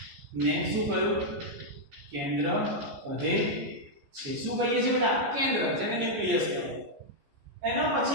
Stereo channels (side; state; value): left; late; 14 ms